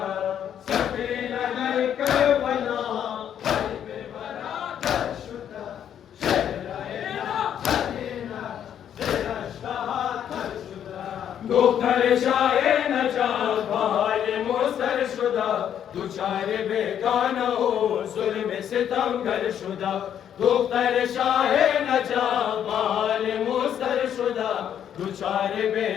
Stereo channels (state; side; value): quieter; right; 9.5 dB